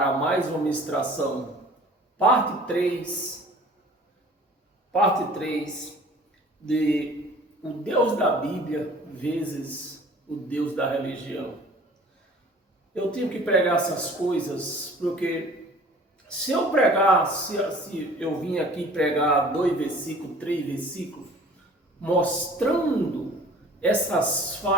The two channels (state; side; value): normal; both; correlation 0.48